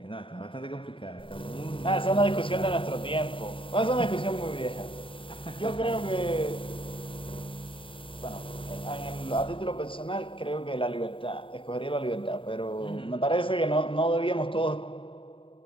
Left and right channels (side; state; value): right; late; 0.25 ms